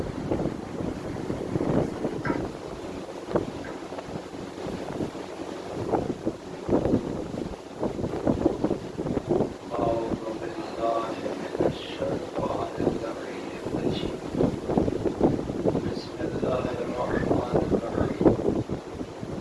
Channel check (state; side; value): identical; both; correlation 1.00